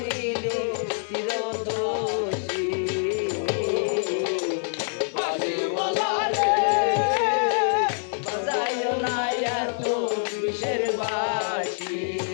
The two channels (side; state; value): right; silent; 61 dB below the other